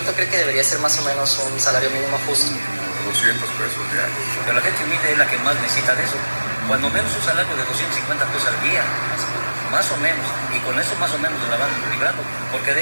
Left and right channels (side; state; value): both; inverted; correlation -1.00